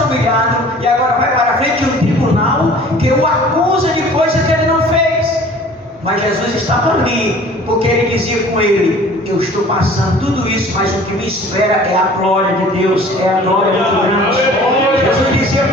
humilhado, e agora vai para a frente de um tribunal que o acusa de coisa que ele não fez. Mas Jesus estava ali, porque ele dizia com ele: eu estou passando tudo isso, mas o que me espera é a glória de Deus, é a glória muito grande. Jesus dizia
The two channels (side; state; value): both; normal; correlation 0.48